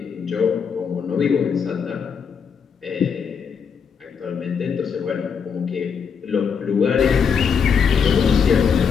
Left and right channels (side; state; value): right; quieter; 6.5 dB